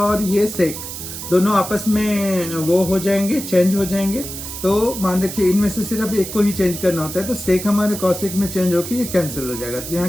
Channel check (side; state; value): right; noise; hiss, 9 dB below the sound